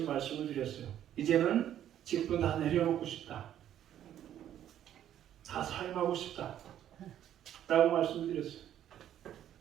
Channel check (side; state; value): left; quieter; 11.0 dB